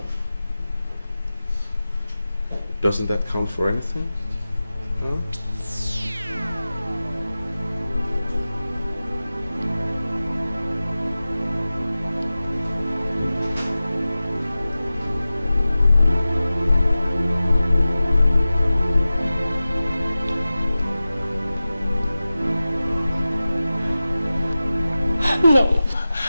Doesn't that count for anything? Huh? No.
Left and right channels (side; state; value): both; inverted; correlation -0.94